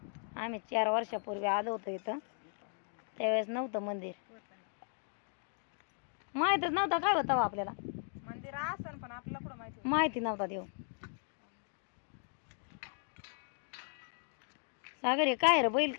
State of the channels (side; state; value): right; silent; 53 dB below the other